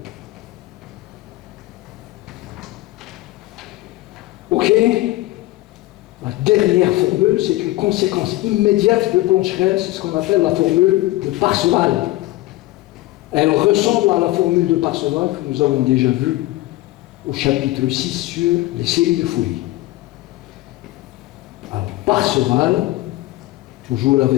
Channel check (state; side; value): quieter; right; 17.9 dB